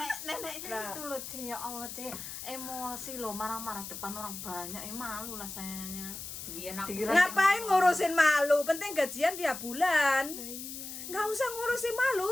Nah. itu loh Ci, ya Allah Ci, emosi loh, marah-marah depan orang banyak, malu lah sayanya. biar aku Dikira- Ngapain ngurusin malu? Penting gajian tiap bulan. Nah, iya. Nggak usah ngurusin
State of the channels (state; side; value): noise; left; hiss, 9 dB below the sound